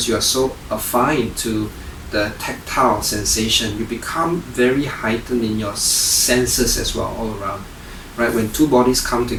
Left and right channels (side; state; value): both; identical; correlation 1.00